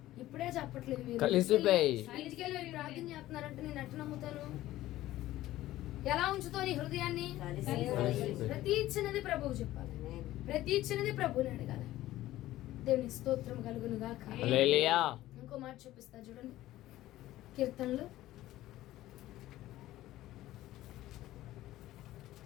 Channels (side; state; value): right; quieter; 15.3 dB